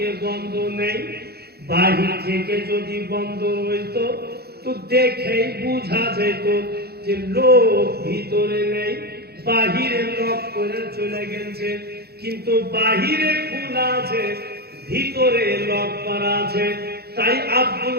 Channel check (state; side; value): late; left; 0.46 ms